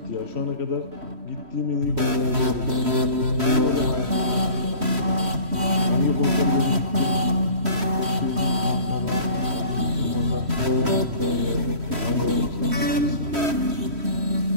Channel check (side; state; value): left; late; 3.1 ms